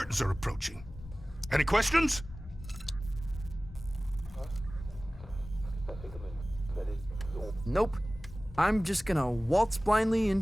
are approaching. Any questions? Nope. I'm just gonna waltz blindly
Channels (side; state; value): both; normal; correlation 0.98